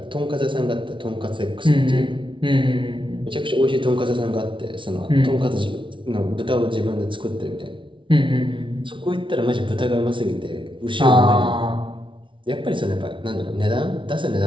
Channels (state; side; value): late; left; 0.24 ms